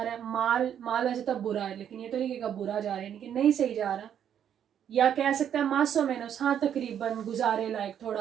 है। माल वैसे तब बुरा है, लेकिन ये तो नहीं कि बुरा जा रहा है, यानी कि नहीं सही जा रहा। या कह सकता है मासो मेनोस, हाँ तकरीबन, गुजारे लायक,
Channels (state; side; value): quieter; left; 9.3 dB